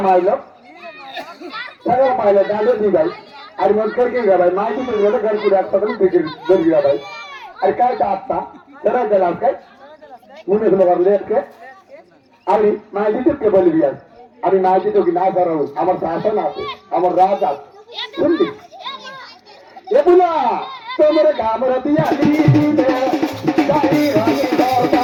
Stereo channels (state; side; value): identical; both; correlation 1.00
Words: মাইল সারা পাইলে ডালে দি ভাই আর মন करके गया भाई माई की तो घर को रात तक बिगड़ गिर गया भाई अरे काय आता जरा जला के मुने से मगर लेट के अरे माई जी के बोल दिया अरे माई जी तो की ना करो हमर शासन आते हमर राज आते सुन ली ये बोला तो मेरे गांव रतिया दी दे गाड़ी रानी दौड़ता